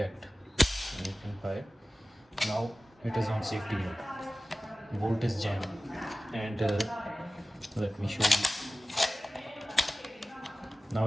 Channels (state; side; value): normal; both; correlation 0.97